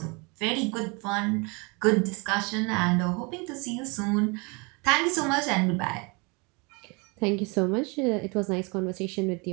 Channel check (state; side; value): quieter; left; 29.6 dB